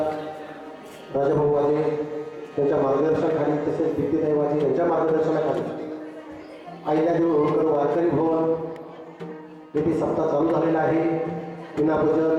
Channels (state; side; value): identical; both; correlation 1.00